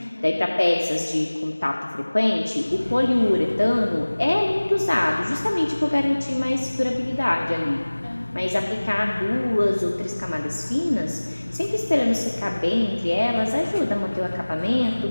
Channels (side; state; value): both; inverted; correlation -1.00